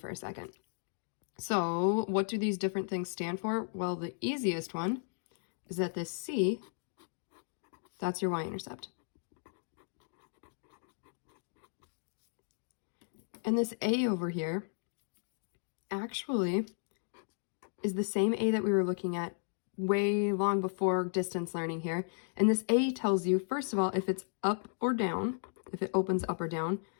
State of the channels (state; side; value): silent; right; digital silence